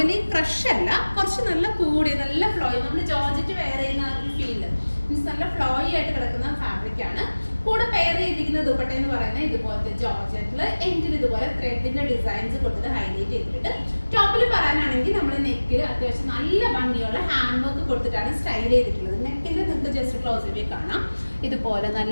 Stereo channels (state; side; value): inverted; both; correlation -1.00